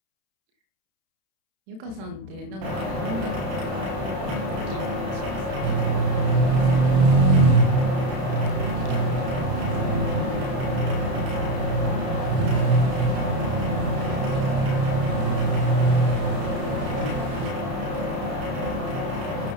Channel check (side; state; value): left; late; 31 ms